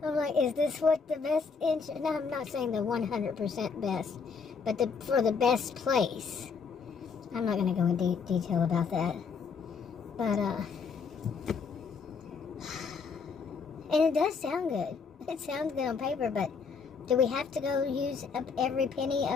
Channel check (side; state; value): right; quieter; 5.4 dB